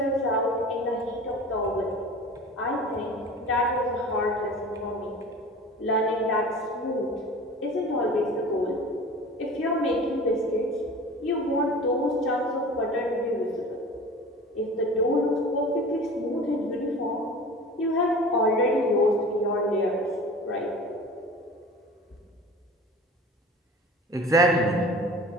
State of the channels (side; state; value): both; normal; correlation 0.39